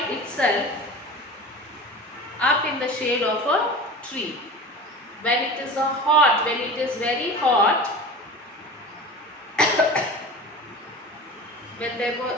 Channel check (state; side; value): normal; both; correlation 0.34